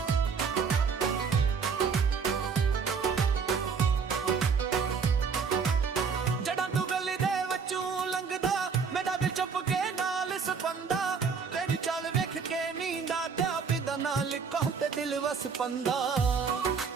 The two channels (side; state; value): left; quieter; 5.7 dB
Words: दिल वस पंदा